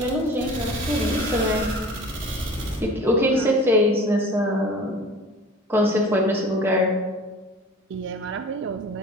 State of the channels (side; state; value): both; normal; correlation 0.42